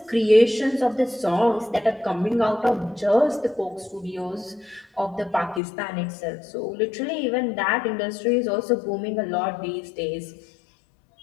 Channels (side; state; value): right; drops out; at 5.6 s